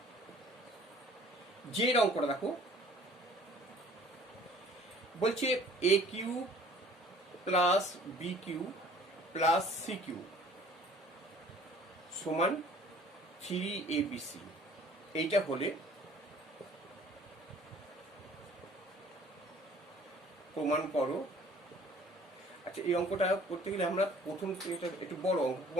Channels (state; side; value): normal; both; correlation 0.53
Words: যে অঙ্কটা দেখো বলছে a³ + b³ + c³ সমান 3abc, এইটা হলে প্রমাণ করো। আচ্ছা এই অঙ্কটা করতে গেলে আমরা প্রথম এটা একটু বড় অঙ্ক,